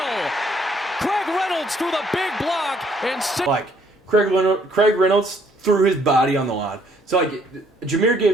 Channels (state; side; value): normal; both; correlation 0.66